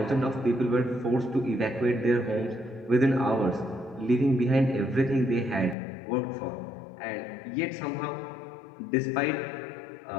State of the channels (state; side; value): drops out; right; at 5.8 s